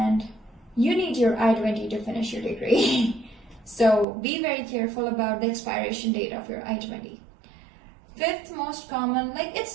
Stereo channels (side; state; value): left; drops out; at 4.0 s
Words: you need your I-20 to finish your degree. So be very careful about the expiration date of your I-20. Fifth most common, like